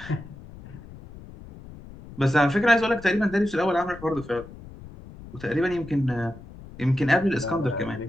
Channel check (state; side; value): noise; left; rumble, 17 dB below the sound